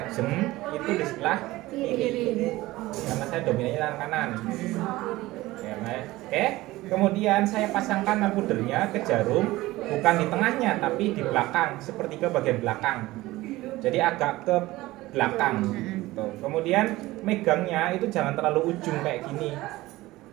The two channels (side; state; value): left; quieter; 18.4 dB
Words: itu di sebelah kiri. Karena saya dominannya tangan kanan. Oke. Kemudian saya pasangkan albuternya ke jarum, bukan di tengahnya tapi di belakang, sepertiga bagian belakang. Jadi agak ke belakang. Tuh. Kemudian megangnya itu jangan terlalu ujung kayak gini.